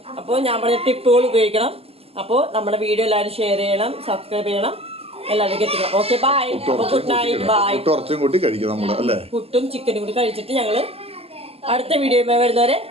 അപ്പോൾ ഞാൻ പറഞ്ഞ ടിപ്പുകൾ ഉപയോഗിക്കണം. അപ്പോൾ നമ്മുടെ വീഡിയോ എല്ലാവരും ഷെയർ ചെയ്യണം, സബ്സ്ക്രൈബ് ചെയ്യണം, എല്ലാവർക്കും എത്തിക്കണം. Okay, bye. അപ്പോൾ ഗുഡ് നൈറ്റ്, ബൈ. പുട്ടും ചിക്കനും കൂടി കഴിച്ചിട്ട് ഞങ്ങൾ അടുത്ത വീഡിയോ വരുന്നവരെ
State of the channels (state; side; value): late; left; 0.29 ms